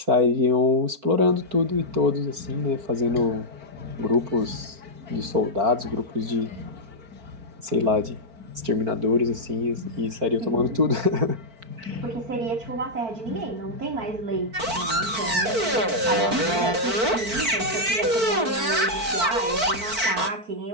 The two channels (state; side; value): late; left; 4.5 ms